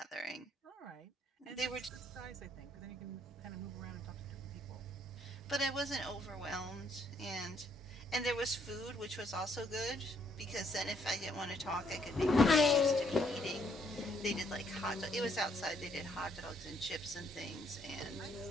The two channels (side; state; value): both; normal; correlation 0.69